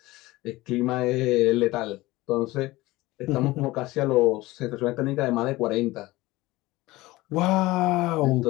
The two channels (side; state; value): right; quieter; 19.4 dB